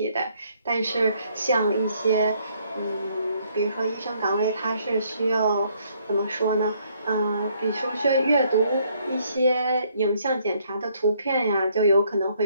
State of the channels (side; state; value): both; inverted; correlation -0.67